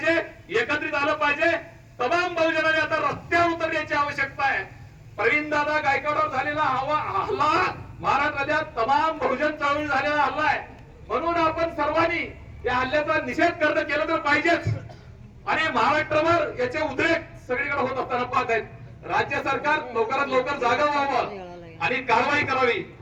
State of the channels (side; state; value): both; identical; correlation 1.00